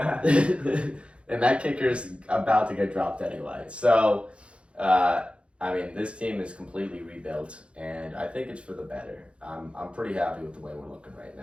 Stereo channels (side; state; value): left; late; 0.059 ms